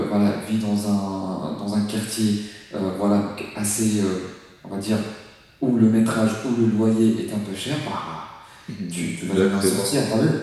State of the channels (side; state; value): both; identical; correlation 1.00